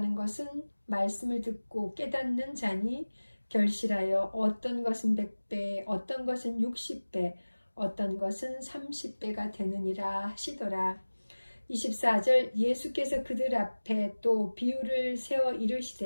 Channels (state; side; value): inverted; both; correlation -1.00